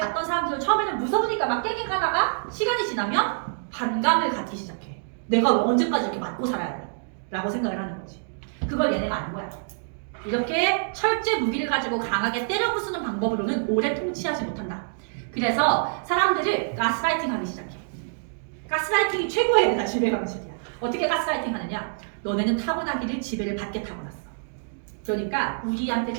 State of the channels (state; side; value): silent; left; digital silence